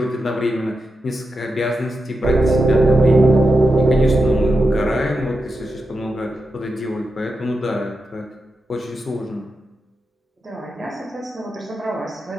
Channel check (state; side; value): normal; both; correlation 0.88